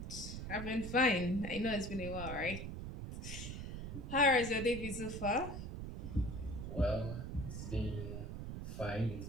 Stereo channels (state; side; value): noise; right; rumble, 6 dB below the sound